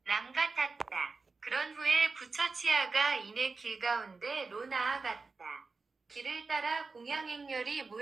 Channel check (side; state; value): left; quieter; 4.2 dB